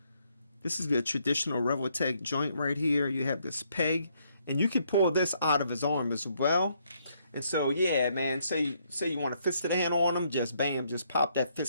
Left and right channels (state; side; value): inverted; both; correlation -0.72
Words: this is the traditional Revoltech joint right here. You have this peg, and you can pull this out of his arm as well. And so, yeah, man, say you want a fisted hand on him, just bam, just pop that